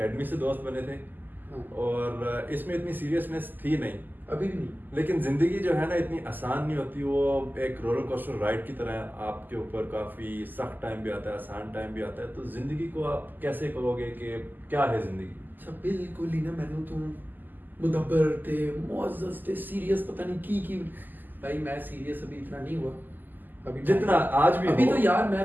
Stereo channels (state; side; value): late; left; 0.088 ms